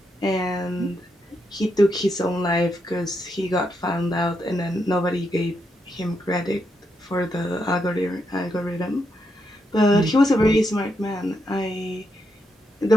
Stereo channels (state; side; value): normal; both; correlation 0.81